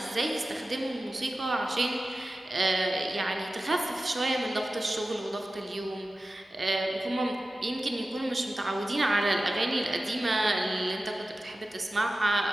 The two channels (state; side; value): normal; both; correlation 0.95